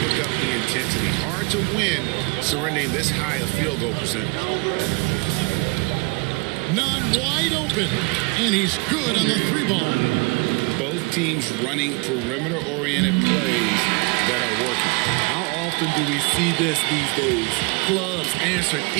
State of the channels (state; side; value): quieter; left; 29.2 dB